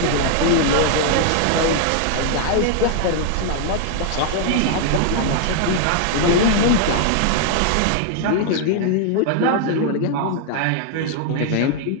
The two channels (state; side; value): different; both; correlation 0.00